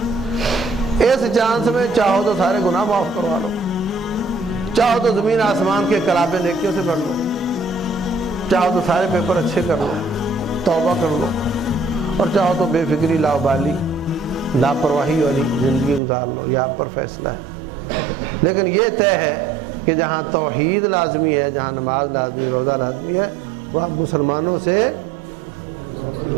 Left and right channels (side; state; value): left; drops out; at 16.0 s